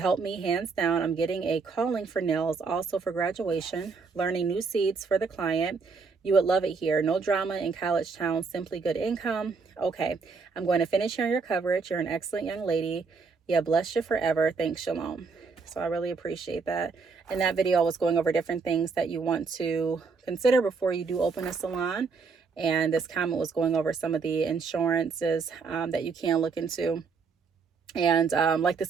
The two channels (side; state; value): left; quieter; 4.8 dB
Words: me hands down. I'm getting a calling for nails, also for graduation, learning new seeds for the client. You would love it here. No drama in college town, simply good income. Okay, I'm going to finish hearing your coverage. You're an excellent young lady. Yeah, bless you forever. Thanks, Shalom. So I really appreciate that. In that video, I was going over different things that you want to consider before you do open a salon. And this comment was going over some of the insurances that you can look into. And like